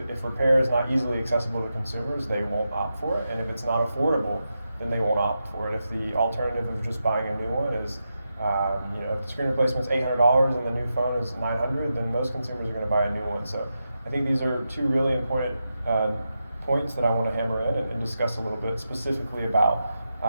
repair is not easily accessible to consumers, they won't opt for it. And if it's not affordable, then they won't opt for it. If the alternative of just buying a new one is, if the screen replacement's $800 and the new phone is $900, then most consumers are going to buy a new one. So I think these are two really important points that I want to hammer in and discuss a little bit specifically about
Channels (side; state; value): both; inverted; correlation -0.88